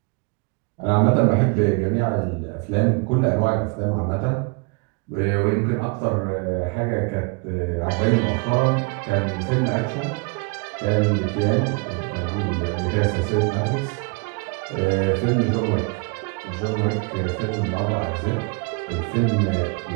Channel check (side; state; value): left; quieter; 32.1 dB